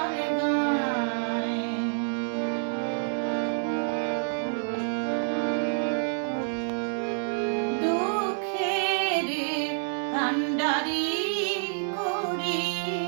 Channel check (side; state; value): left; silent; digital silence